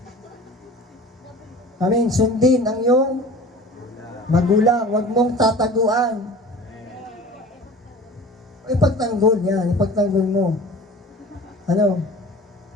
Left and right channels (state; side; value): normal; both; correlation 0.41